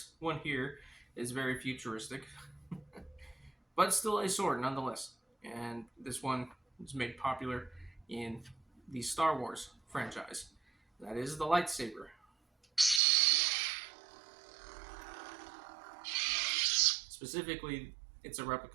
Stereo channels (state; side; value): drops out; left; at 13.0 s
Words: one here is very futuristic, but still a sword nonetheless. And this one was made popular in the Star Wars franchise. That is the lightsaber. Specifically, it's a